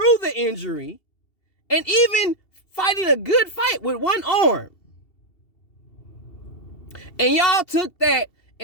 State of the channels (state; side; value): late; right; 2.7 ms